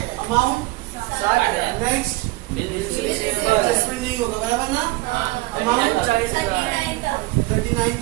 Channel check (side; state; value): left; quieter; 20.5 dB